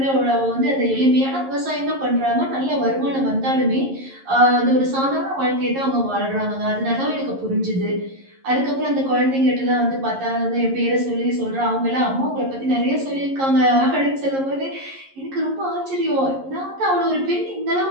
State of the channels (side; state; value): left; late; 11 ms